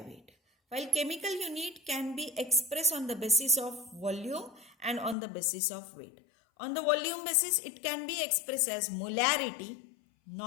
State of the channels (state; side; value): drops out; right; at 5.2 s